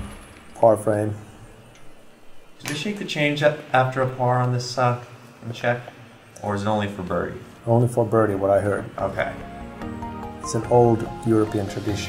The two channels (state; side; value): identical; both; correlation 1.00